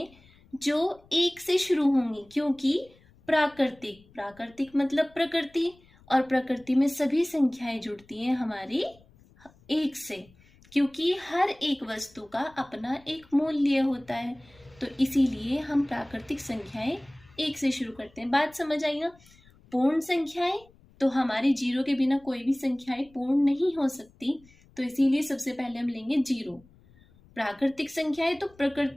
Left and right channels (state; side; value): noise; left; rumble, 28 dB below the sound